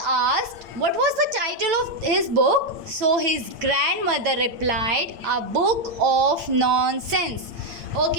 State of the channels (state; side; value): late; left; 8.8 ms